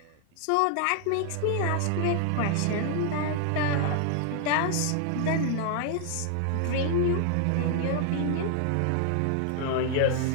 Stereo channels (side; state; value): both; different; correlation 0.00